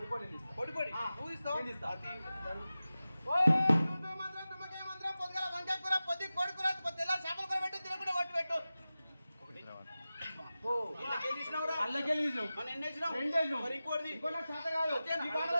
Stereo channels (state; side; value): inverted; both; correlation -0.95